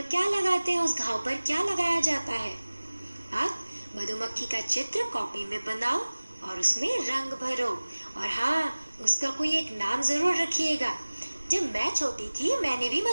क्या लगाते हैं, उस घाव पर क्या लगाया जाता है। आप मधुमक्खी का चित्र कॉपी में बनाओ और उसमें रंग भरो। और हाँ, उसका कोई एक नाम जरूर रखिएगा जब मैं छोटी थी मैंने भी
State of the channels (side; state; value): both; inverted; correlation -1.00